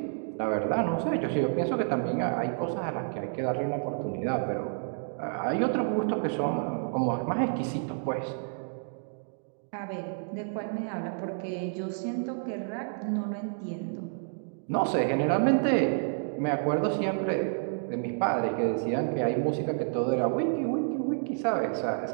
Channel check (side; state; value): left; silent; digital silence